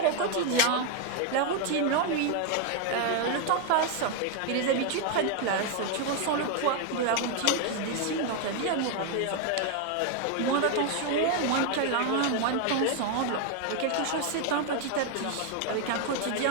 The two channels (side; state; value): both; different; correlation 0.01